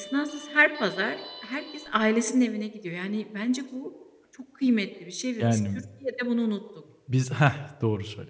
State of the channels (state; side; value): identical; both; correlation 1.00